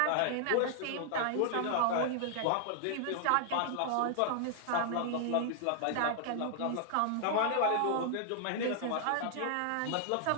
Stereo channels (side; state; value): both; different; correlation -0.01